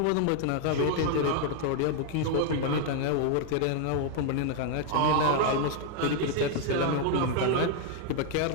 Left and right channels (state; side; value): different; both; correlation 0.00